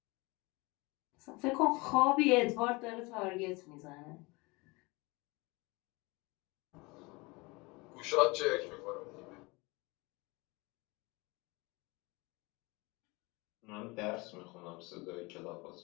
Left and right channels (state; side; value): quieter; right; 25.3 dB